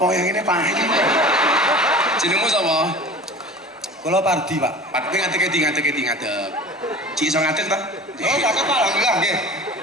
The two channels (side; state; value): both; normal; correlation 0.38